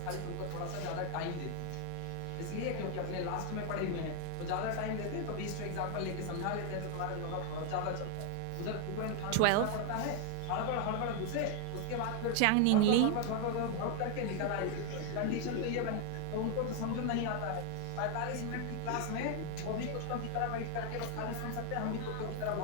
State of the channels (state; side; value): different; both; correlation 0.00